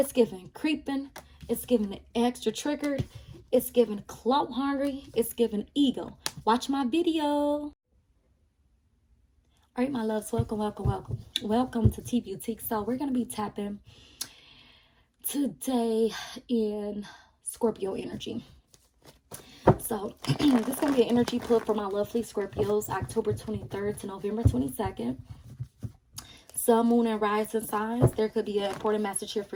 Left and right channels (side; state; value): both; identical; correlation 1.00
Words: giving creeping. It's giving extra triggered. It's giving clout hungry. It's giving ego. Watch my video. All right, my loves, welcome, welcome, welcome. Welcome to T Boutique. So we're going to be tapping today in Scorpio energy. So this is going to be an energy pull for my lovely Scorpios, October 23rd to November 22nd. Sun, moon, and rising signs. There could be an important message here